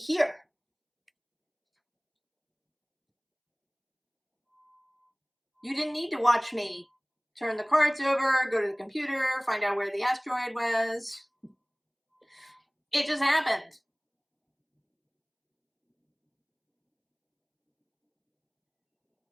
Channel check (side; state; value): both; identical; correlation 1.00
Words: You didn't need to watch me turn the cards over, go to the computer, find out where the asteroid was. It just happened.